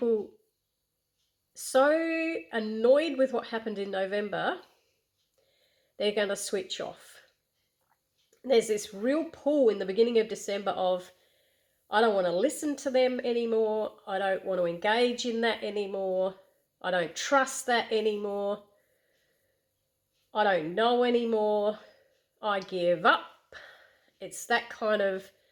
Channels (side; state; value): both; identical; correlation 1.00